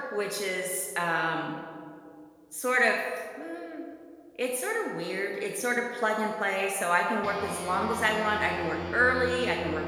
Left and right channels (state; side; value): identical; both; correlation 1.00